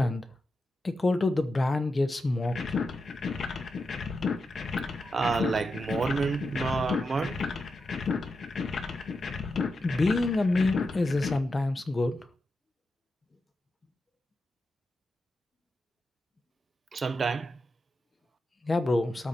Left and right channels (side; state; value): both; normal; correlation 0.88